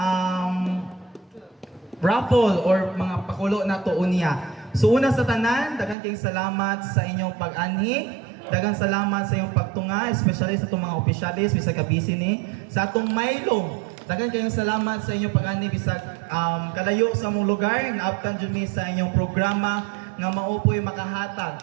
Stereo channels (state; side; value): drops out; left; at 6.0 s